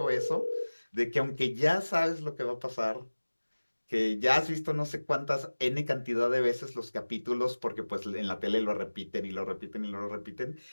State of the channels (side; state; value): both; inverted; correlation -1.00